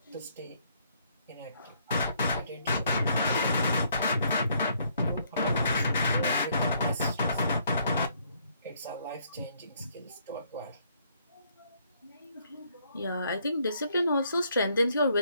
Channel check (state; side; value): inverted; both; correlation -0.68